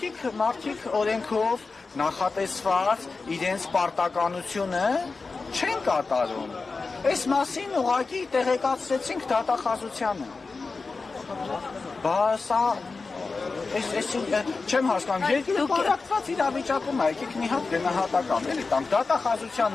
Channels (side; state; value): right; quieter; 4.1 dB